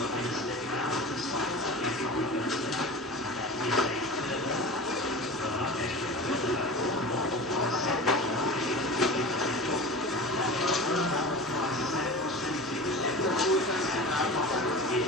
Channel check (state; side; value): normal; both; correlation 0.33